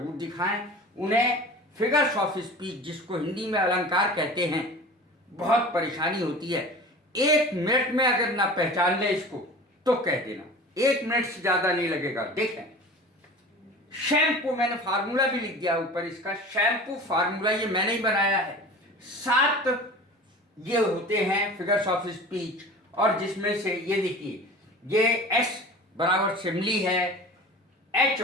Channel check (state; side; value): normal; both; correlation 0.38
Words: दिखाएं। उन्हें फिगर्स ऑफ स्पीच, जिसको हिंदी में अलंकार कहते हैं, बहुत परेशानी होती है। 1 मिनट में अगर ना पहचान ले इसको तो कह देना, 1 मिनट से ज़्यादा नहीं लगेगा। देखें, शैम्पू, मैंने फार्मूला भी लिख दिया ऊपर इसका। शैम्पू फार्मूला ये मैंने ही बनाया है। 7 ये होते हैं फिगर्स ऑफ स्पीच, और जिसमें से ये देखिए, ये S बराबर सिमली है, H